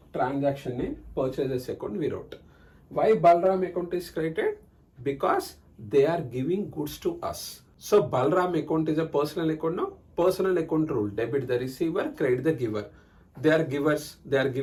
transaction name, purchases account we wrote. Why Balram account is created? Because they are giving goods to us. So Balram account is a personal account now. Personal account rule, debit the receiver, credit the giver. They are givers, they are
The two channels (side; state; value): both; identical; correlation 1.00